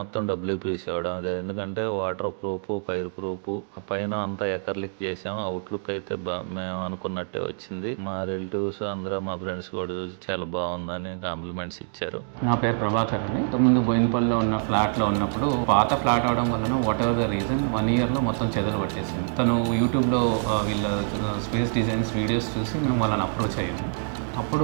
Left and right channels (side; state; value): left; silent; digital silence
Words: డబ్ల్యూపీసీ వాడడం. అదే ఎందుకంటే వాటర్ ప్రూఫ్, ఫైర్ ప్రూఫ్, పైన అంతా ఎకర్లిక్ చేసాం. అవుట్లుక్ అయితే మేము అనుకున్నట్టే వచ్చింది. మా రిలేటివ్స్ అందరూ, మా ఫ్రెండ్స్ కూడా చూసి చాలా బాగుందని కాంప్లిమెంట్స్ ఇచ్చారు. నా పేరు ప్రభాకర్ అండి. ఇంతకుముందు బోయినపల్లిలో ఉన్న ఫ్లాట్లో ఉన్నప్పుడు పాత ఫ్లాట్ అవడం వలన వాట్ ఎవర్ ద రీజన్ 1 yearలో మొత్తం చెదలు పట్టేసింది. తను యూట్యూబ్లో వీళ్ళ స్పేస్ డిజైన్స్ వీడియోస్ చూసి మేము వాళ్ళని అప్రోచ్ అయ్యాము. అప్పుడు